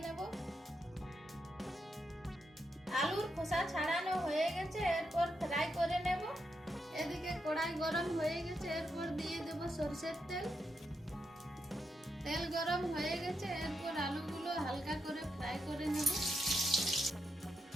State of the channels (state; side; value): normal; both; correlation 0.83